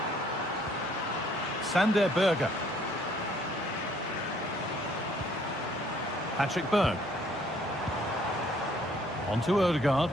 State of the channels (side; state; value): both; normal; correlation 0.63